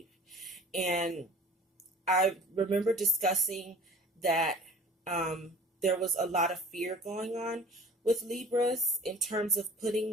And I remember discussing that there was a lot of fear going on with Libras in terms of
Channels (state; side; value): normal; both; correlation 0.45